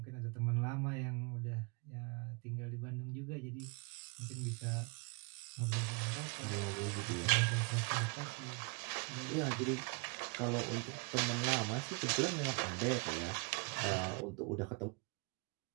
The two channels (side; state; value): left; quieter; 31.6 dB